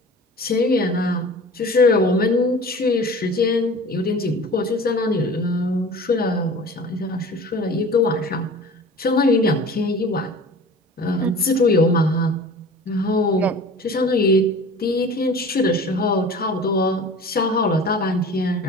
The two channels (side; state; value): both; normal; correlation 0.41